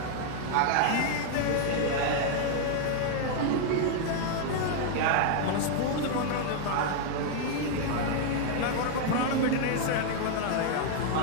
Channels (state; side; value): different; both; correlation 0.00